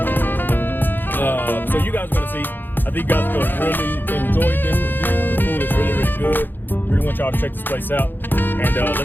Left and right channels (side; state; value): right; late; 0.093 ms